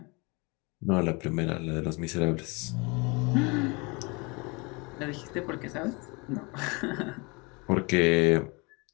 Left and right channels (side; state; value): right; quieter; 28.5 dB